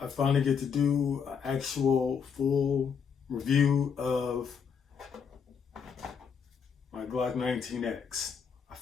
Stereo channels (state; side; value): quieter; right; 6.6 dB